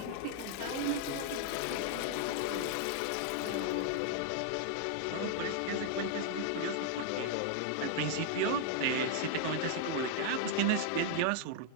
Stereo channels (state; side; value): different; both; correlation 0.00